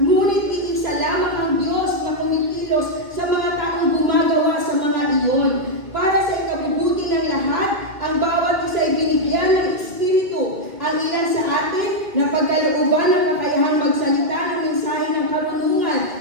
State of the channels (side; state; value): left; late; 2.1 ms